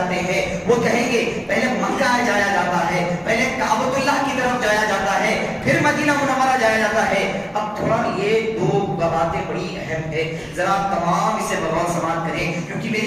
ہیں؟ وہ کہیں گے پہلے مکہ جایا جاتا ہے، پہلے کعبۃ اللہ کی طرف جایا جاتا ہے، پھر مدینہ منورہ جایا جاتا ہے۔ اب تھوڑا یہ دو باتیں بڑی اہم ہے، ذرا تمام اسے بغور سماعت کریں کیونکہ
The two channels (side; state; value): both; identical; correlation 1.00